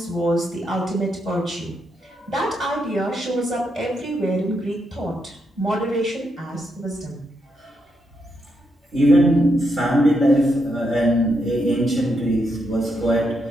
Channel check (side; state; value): both; normal; correlation 0.81